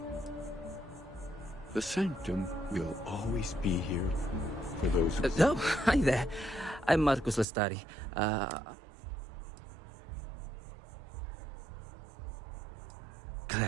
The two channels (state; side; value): drops out; left; at 7.5 s